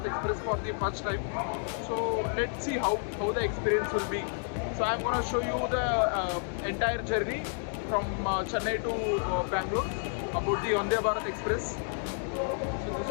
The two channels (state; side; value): silent; right; 55 dB below the other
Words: Express for the first time. So let's see how the experience will be. So I'm gonna show you the entire journey from Chennai to Bangalore about the Vande Bharat Express. So this